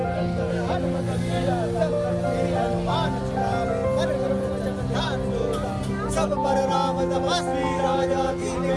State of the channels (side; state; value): both; identical; correlation 1.00